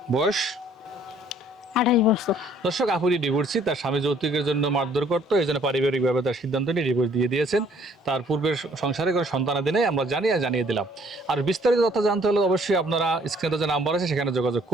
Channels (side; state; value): both; normal; correlation 0.61